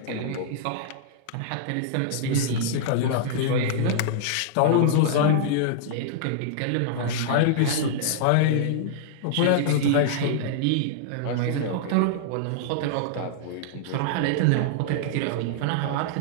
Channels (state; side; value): different; both; correlation -0.01